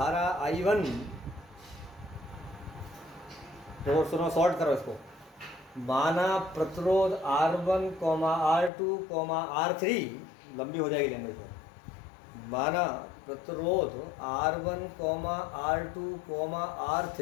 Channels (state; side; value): drops out; right; at 8.7 s